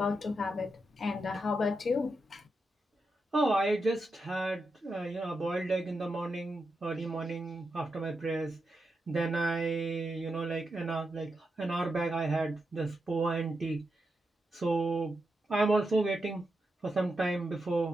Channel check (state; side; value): normal; both; correlation 0.86